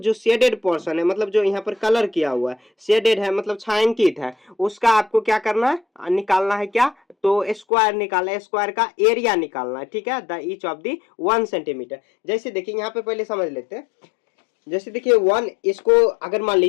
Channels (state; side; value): drops out; right; at 7.7 s